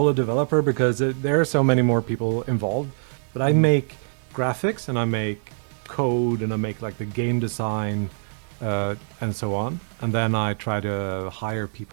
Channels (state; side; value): silent; left; digital silence